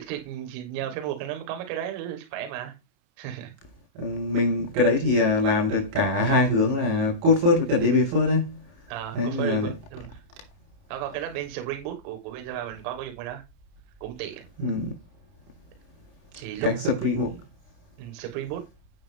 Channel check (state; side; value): late; left; 29 ms